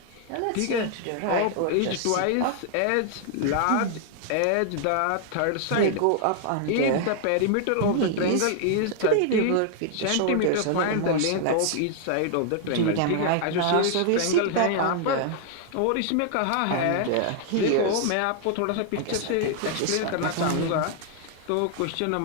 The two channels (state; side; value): different; both; correlation 0.00